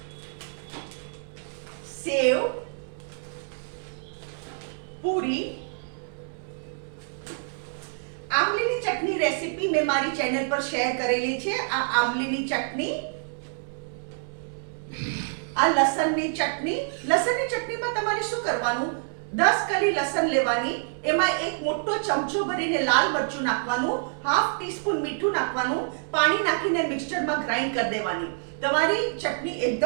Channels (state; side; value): silent; left; 60 dB below the other